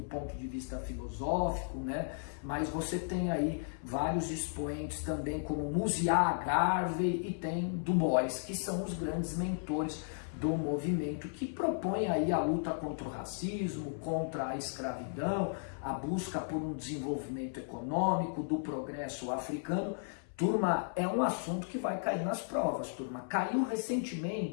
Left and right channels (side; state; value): right; silent; 55 dB below the other